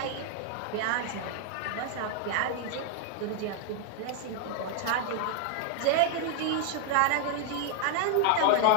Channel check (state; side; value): different; both; correlation 0.00